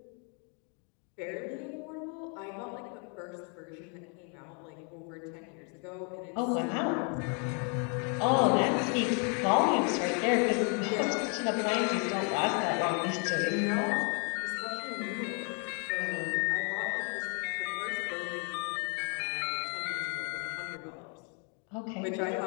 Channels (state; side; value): quieter; right; 37.3 dB